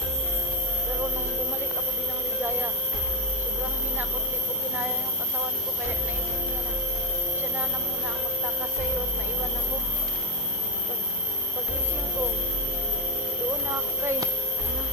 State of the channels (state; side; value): normal; both; correlation 0.11